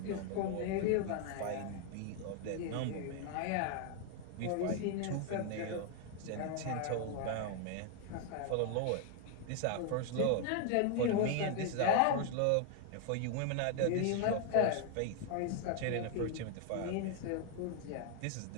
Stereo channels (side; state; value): both; different; correlation 0.00